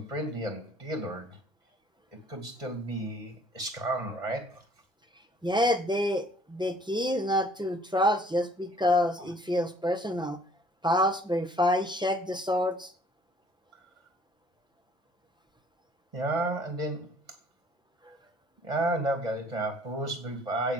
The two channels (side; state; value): both; normal; correlation 0.57